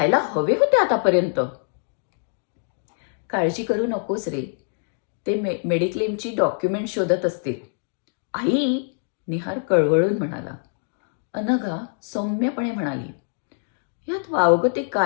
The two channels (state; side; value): silent; right; digital silence